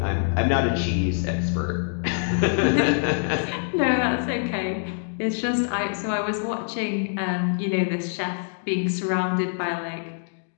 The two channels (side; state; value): right; silent; digital silence